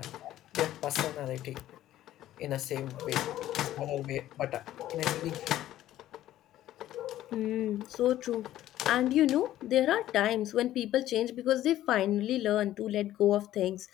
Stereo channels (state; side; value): quieter; right; 13.5 dB